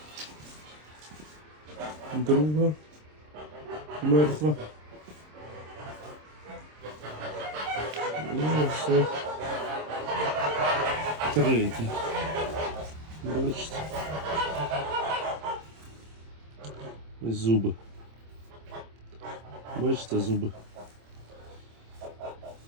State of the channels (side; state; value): left; late; 26 ms